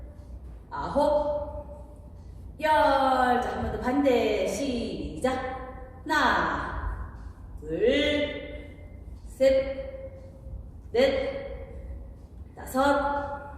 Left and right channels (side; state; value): both; identical; correlation 1.00